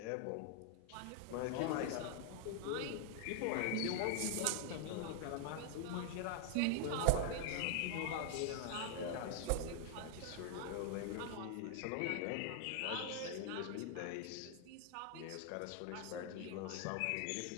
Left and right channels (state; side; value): different; both; correlation 0.00